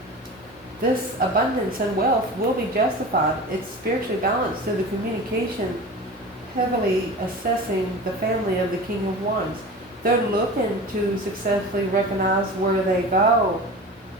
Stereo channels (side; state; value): both; normal; correlation 0.34